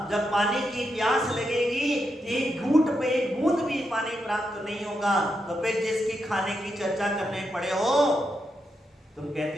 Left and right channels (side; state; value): both; normal; correlation 0.84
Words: जब पानी की प्यास लगेगी, एक घूंट पे एक बूंद भी पानी प्राप्त नहीं होगा। तो फिर जिसकी खाने की चर्चा करने पड़े हो, तुम